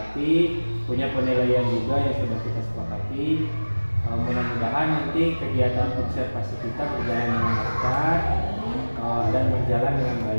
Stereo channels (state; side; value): inverted; both; correlation -1.00